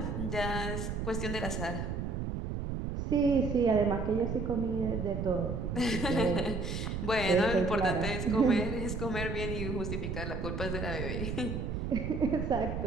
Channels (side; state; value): right; noise; rumble, 3 dB below the sound